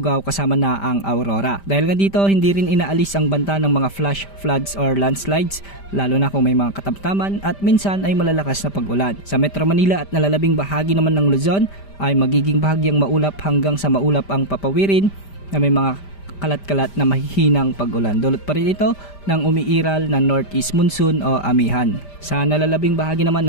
kasama na ang Aurora. Dahil nga dito, hindi rin inaalis ang banta ng mga flash floods or landslides, lalo na kung may mga katamtaman at minsan ay malalakas na pag-ulan. Sa Metro Manila at nalalabing bahagi naman ng Luzon ay magiging bahagyang maulap hanggang sa maulap ang papawirin na may mga kalat-kalat na mahihinang pag-ulan. Dulot pa rin ito ng umiiral na northeast monsoon o amihan. Sa nalalabing bahagi naman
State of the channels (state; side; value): late; right; 5.1 ms